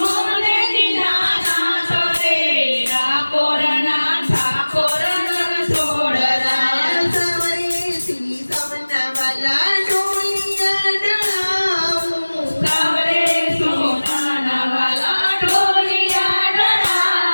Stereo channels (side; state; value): both; inverted; correlation -1.00